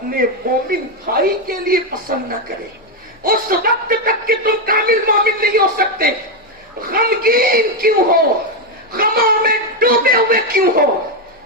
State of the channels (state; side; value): normal; both; correlation 0.05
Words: مومن بھائی کے لیے پسند نہ کرے. اس وقت تک کہ تم کامل مومن نہیں ہو سکتے. غمگین کیوں ہو، غموں میں ڈوبے ہوئے کیوں ہو؟